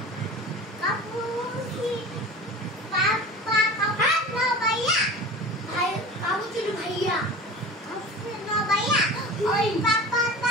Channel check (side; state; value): both; normal; correlation 0.36